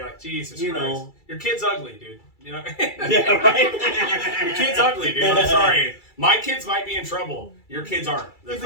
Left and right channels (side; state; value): right; late; 2.3 ms